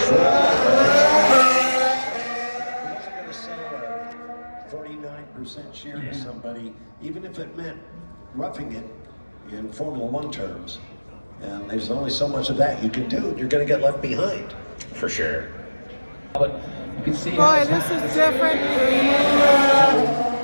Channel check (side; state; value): both; inverted; correlation -1.00